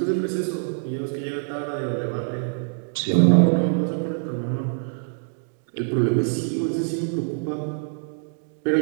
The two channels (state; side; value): silent; left; digital silence